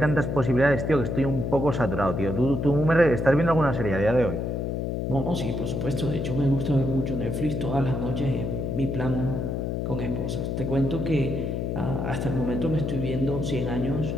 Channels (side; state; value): left; noise; hum, 1 dB below the sound